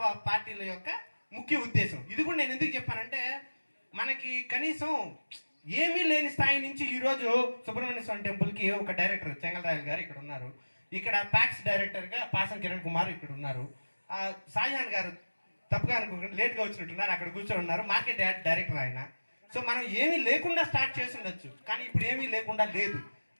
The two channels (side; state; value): both; inverted; correlation -1.00